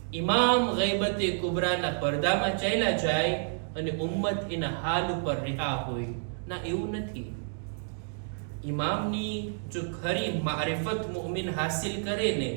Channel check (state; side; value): silent; left; digital silence